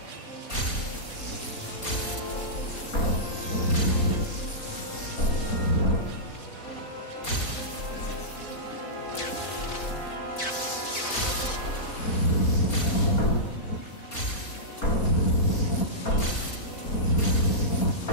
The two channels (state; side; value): late; right; 4.3 ms